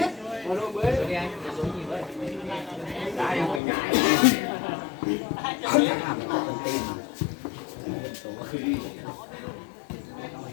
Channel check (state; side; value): drops out; right; at 3.6 s